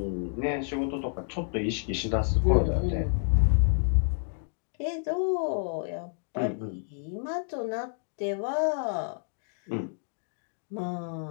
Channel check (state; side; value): silent; right; digital silence